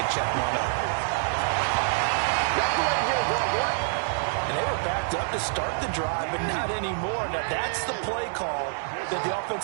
check one up. And they were backed up to start the drive, but not anymore. Now that's the play call that the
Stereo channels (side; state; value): left; silent; digital silence